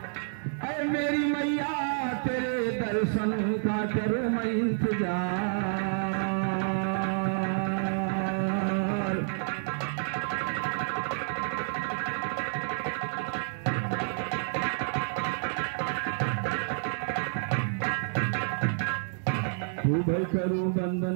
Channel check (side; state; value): left; silent; digital silence